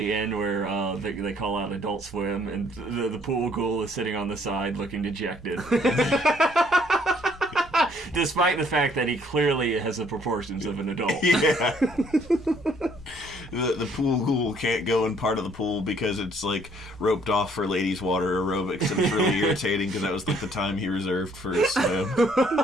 end where they call out Adult Swim, and the pool ghoul is sitting on the side looking dejected. Despite the fact that he clearly has the proportions of an adult. Yeah. The pool ghoul can't go in part of the pool because it's like roped off for ladies' water aerobics, and it's really irritating because that was like the time he reserved for his swim.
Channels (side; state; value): both; normal; correlation 0.63